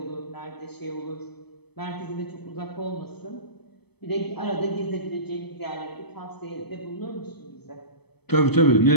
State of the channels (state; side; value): late; right; 0.98 ms